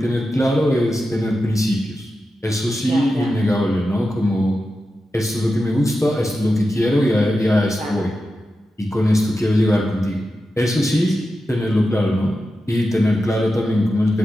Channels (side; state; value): both; normal; correlation 0.91